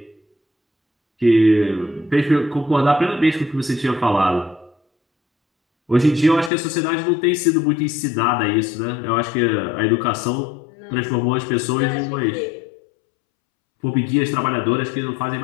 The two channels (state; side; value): drops out; right; at 6.5 s